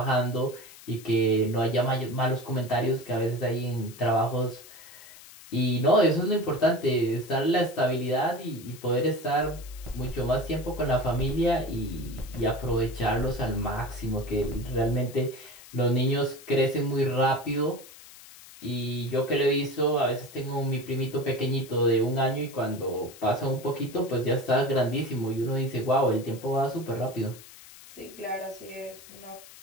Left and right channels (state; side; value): noise; left; hiss, 19 dB below the sound